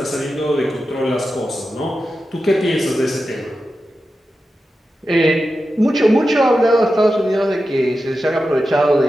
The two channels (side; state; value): both; normal; correlation 0.91